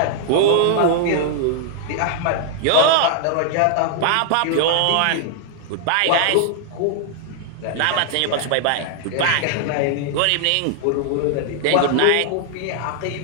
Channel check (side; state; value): both; different; correlation 0.00